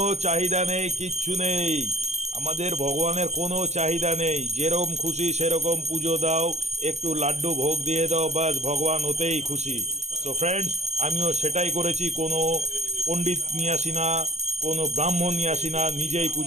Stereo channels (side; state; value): left; late; 0.32 ms